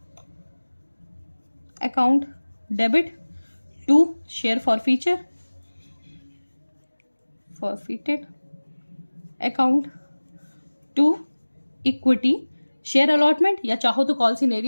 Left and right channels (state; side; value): inverted; both; correlation -1.00